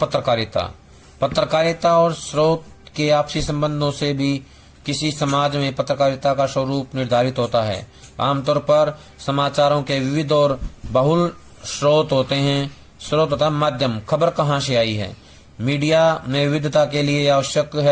पत्रकारिता और स्रोत के आपसी संबंधों से भी किसी समाज में पत्रकारिता का स्वरूप निर्धारित होता है। आमतौर पर समाचारों के विविध और बहुल स्रोत होते हैं। स्रोत तथा माध्यम, खबर कहाँ से आई है। मीडिया में विविधता के लिए आवश्यक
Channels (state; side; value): identical; both; correlation 1.00